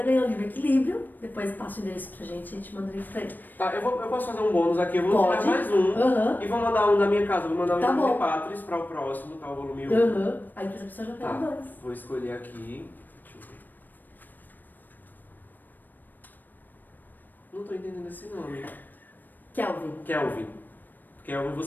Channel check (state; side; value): late; right; 0.089 ms